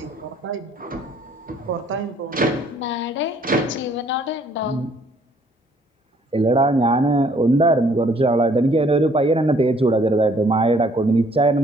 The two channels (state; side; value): normal; both; correlation 0.62